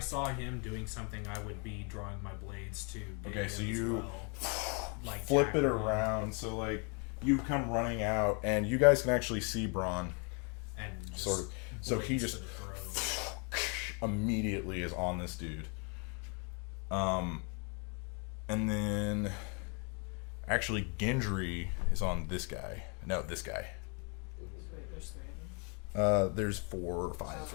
him doing something, I would be drawing my blades to. Okay, hit so him as you well. Like flip it tackle him. around. So, like, you come running out, and you guys can actually see Braun. and just Sort of. So he blades just to the throat. immediately is on this dude. And then actually Gendry is on this guy. No, this guy. Wait, there's 3 of them. There's 4 or 5.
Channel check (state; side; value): quieter; right; 35.4 dB